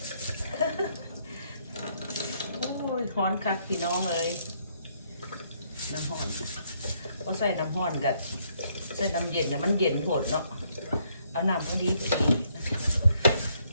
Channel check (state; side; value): inverted; both; correlation -0.70